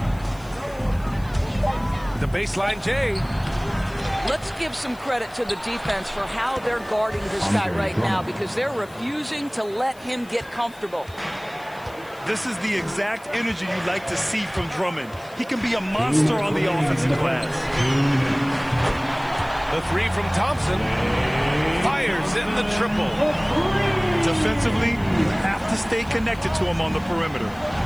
The baseline J. Let's give some credit to the defense for how they're guarding this guy right now, because they're refusing to let him get comfortable. This is the exact energy you like to see from Drummond. He can be a monster on the offensive glass. The 3 from Thompson. Fires in the triple. Defensively, you have to stay connected to him on the perimeter.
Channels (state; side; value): noise; left; hiss, 25 dB below the sound